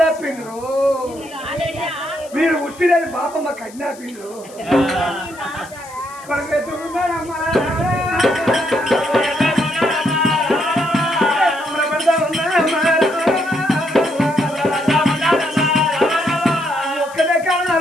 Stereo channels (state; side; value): noise; left; hiss, 21 dB below the sound